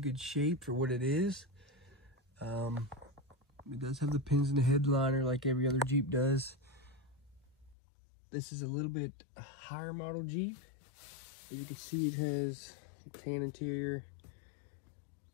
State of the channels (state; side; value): drops out; right; at 7.8 s